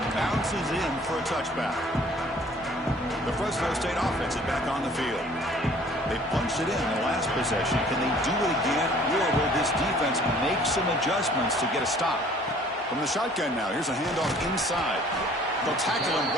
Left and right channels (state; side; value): normal; both; correlation 0.54